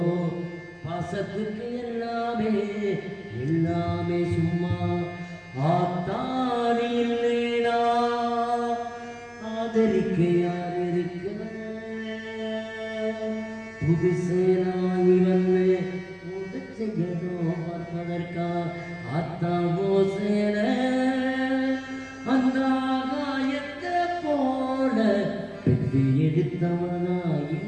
பாசத்துக்கு எல்லாமே எல்லாமே சும்மா ஆத்தானி இல்லைனா ஆதரிக்க யார் இருக்க புதுசேனாய் வந்து புதுச்ச செய்யணும் பார்ப்பதற்கா அத்தாவோ சேர அந்த ஆகாயத்தை போல பெற்று எடுத்தவனா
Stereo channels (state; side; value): identical; both; correlation 1.00